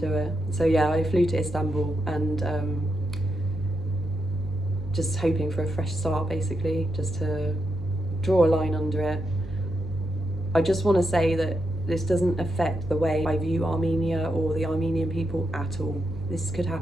it. So yeah, I flew to Istanbul, and just hoping for a fresh start, basically, just to draw a line under it. I just want to say that this doesn't affect the way I view Armenia or the Armenian people at all. This could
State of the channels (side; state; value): right; noise; hum, 13 dB below the sound